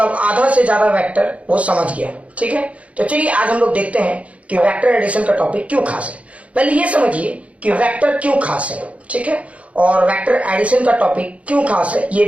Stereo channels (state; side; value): late; left; 0.065 ms